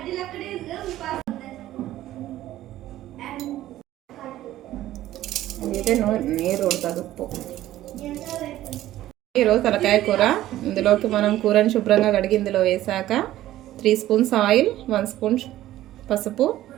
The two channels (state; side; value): quieter; left; 14.2 dB